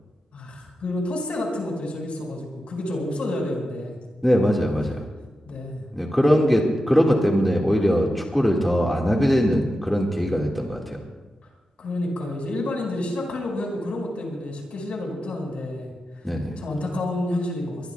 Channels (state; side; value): normal; both; correlation 0.90